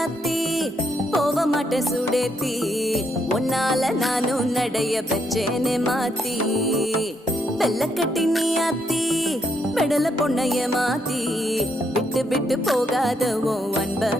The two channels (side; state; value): both; normal; correlation 0.76